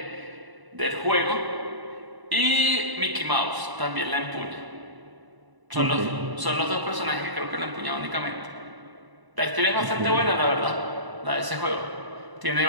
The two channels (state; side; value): late; left; 1.0 ms